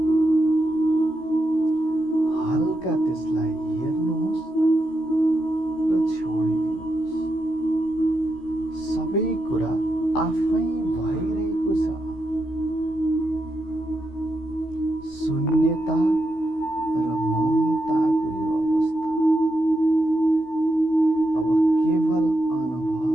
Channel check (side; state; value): right; late; 16 ms